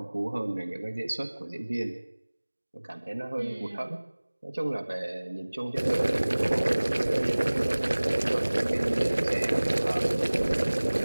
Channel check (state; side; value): inverted; both; correlation -1.00